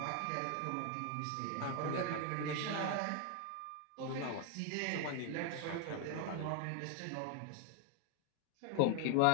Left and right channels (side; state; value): both; different; correlation 0.01